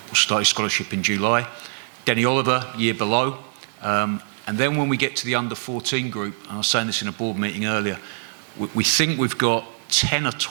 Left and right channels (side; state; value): left; silent; 63 dB below the other